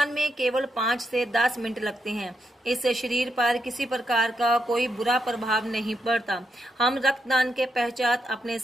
में केवल 5 से 10 मिनट लगते हैं। इससे शरीर पर किसी प्रकार का कोई बुरा प्रभाव नहीं पड़ता। हम रक्तदान के पश्चात अपने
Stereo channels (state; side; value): normal; both; correlation 0.81